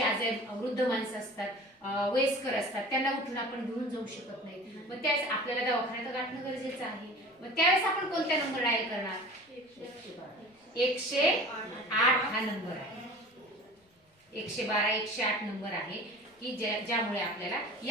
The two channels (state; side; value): normal; both; correlation 0.40